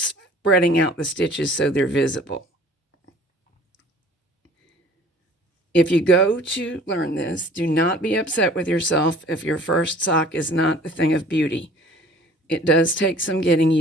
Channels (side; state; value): both; normal; correlation 0.50